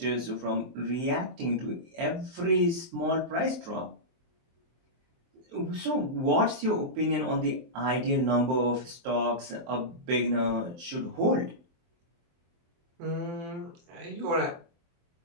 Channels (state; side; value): late; left; 23 ms